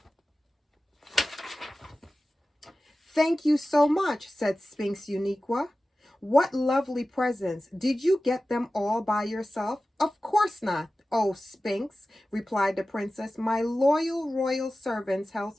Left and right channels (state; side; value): normal; both; correlation 0.95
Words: Thank you so much, said Sphinx Uniqua. What lovely presents. Did you get them all by yourself? Of course not. Oh, Sphinx, replied the princess. My loyal royal servants